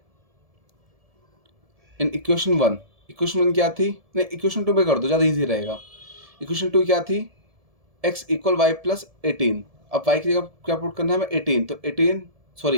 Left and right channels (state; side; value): late; left; 1.7 ms